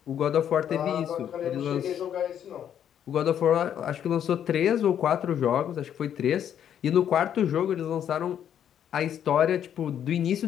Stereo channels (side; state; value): right; quieter; 9.5 dB